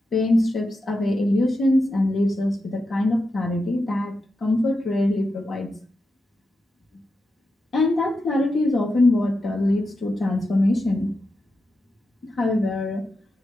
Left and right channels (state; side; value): normal; both; correlation 0.88